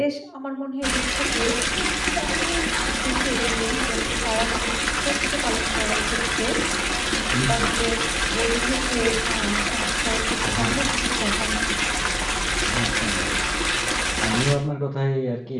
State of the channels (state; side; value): identical; both; correlation 1.00